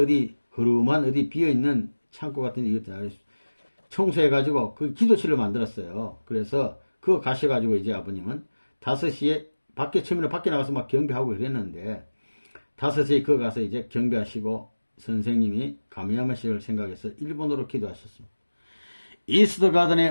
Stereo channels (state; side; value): inverted; both; correlation -1.00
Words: 어디 흐름한 어디 비어있는 창고 같은 데 청소해가지고 그 기도실을 만들었어요. 그래서 그거 가셔가지고 이제 아버님은 5시에 처음에는 밖에 나가서 막 경배하고 그랬는데 5시에 거 가서 이제 경배하시고 선생님이 가미야마 씨를 생각해서 일본어로 기도하셨습니다. 이스트